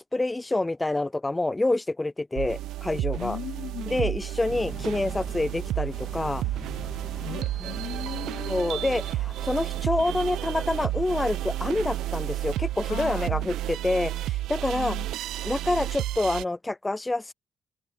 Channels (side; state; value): both; normal; correlation 0.80